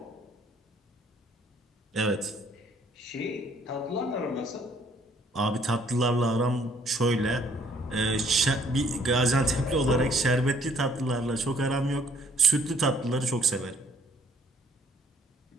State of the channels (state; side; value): normal; both; correlation 0.62